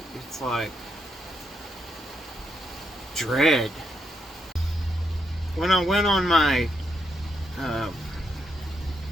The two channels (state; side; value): normal; both; correlation 0.79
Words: it's like dread. When I went on my